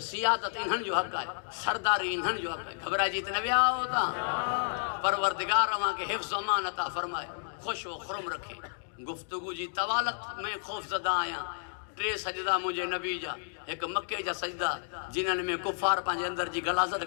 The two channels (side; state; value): right; silent; digital silence